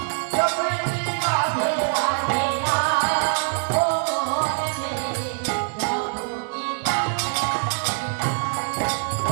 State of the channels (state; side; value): silent; left; digital silence